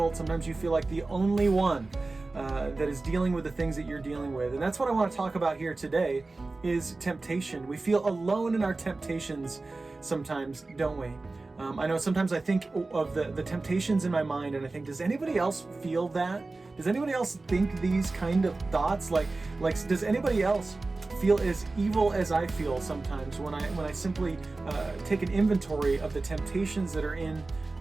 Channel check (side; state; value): left; quieter; 3.4 dB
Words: Sometimes you feel like the only one that is dealing with the things that you're dealing with. And that's what I want to talk about here today is temptation. We feel alone in our temptations sometimes, don't we? I know sometimes I think of the temptations in my mind and I think, does anybody else feel that? Does anybody else think these kind of thoughts? Like does anybody else feel as evil as I feel sometimes when I simply take an inventory of the temptations that are in